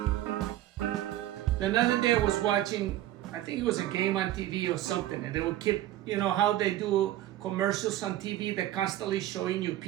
other day I was watching, I think it was a game on TV or something, and they would keep, you know how they do commercials on TV, they're constantly showing you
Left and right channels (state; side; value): quieter; left; 13.9 dB